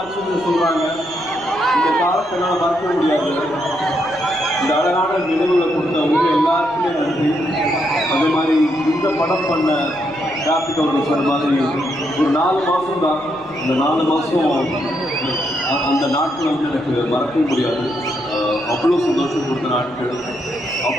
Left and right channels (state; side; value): noise; right; rumble, 25 dB below the sound